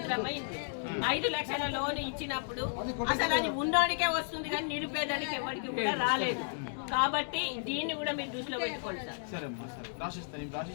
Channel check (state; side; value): silent; right; digital silence